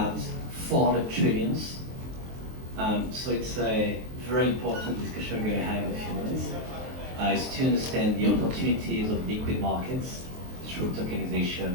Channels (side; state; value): left; late; 23 ms